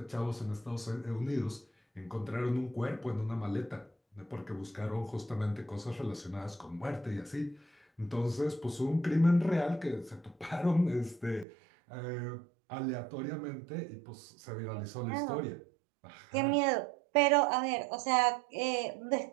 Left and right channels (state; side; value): drops out; left; at 11.5 s